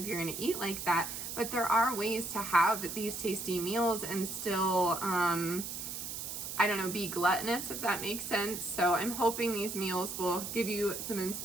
you're gonna eat like that, but there are ways to have these tasty meals and still I don't know, be gluttonous, if that makes sense. So I'm hoping these meals will give you some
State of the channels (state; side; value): noise; right; hiss, 6 dB below the sound